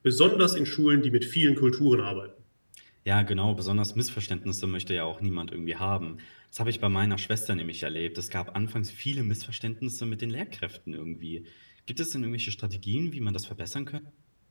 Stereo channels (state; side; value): inverted; both; correlation -1.00